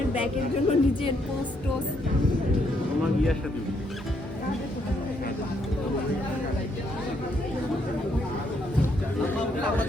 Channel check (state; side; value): normal; both; correlation 0.73